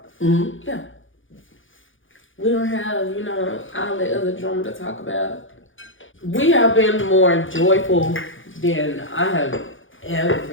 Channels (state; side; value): late; right; 0.57 ms